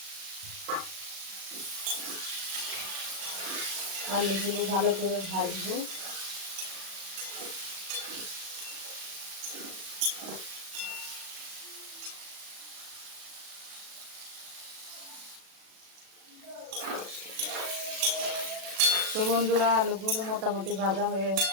আলুগুলো ভালো করে ভাজবো। তো বন্ধুরা, আলুগুলো মোটামুটি ভাজা হয়ে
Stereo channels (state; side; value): late; left; 37 ms